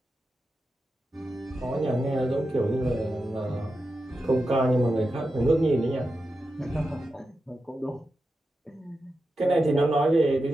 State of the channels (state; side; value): normal; both; correlation 0.90